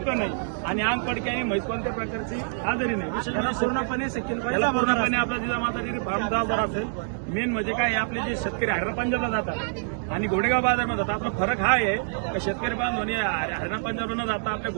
नाही आणि अंग पडक्याने म्हैस कोणत्या प्रकारची आजारी नाही. विशेष म्हणजे पूर्णपणे शकील भाई त्याला पूर्णपणे आपला जिजामाता डेअरी फार्म जबाबदार असेल. मेन म्हणजे काय आपले जे शेतकरी हरियाणा पंजाबला जातात आणि घोडेगाव बाजारमध्ये जातात. आपला फरक हा आहे की शेतकरी बांधवांनी हरियाणा पंजाबला न जाता आपल्या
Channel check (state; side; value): silent; left; digital silence